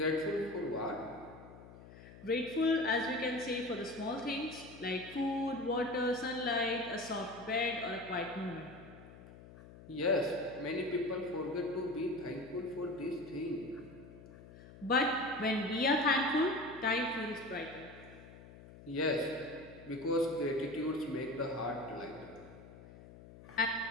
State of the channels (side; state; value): left; noise; hum, 18 dB below the sound